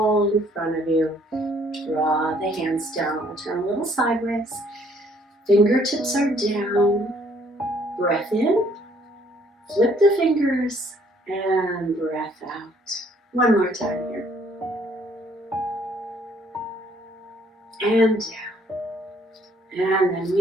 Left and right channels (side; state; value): both; normal; correlation 0.63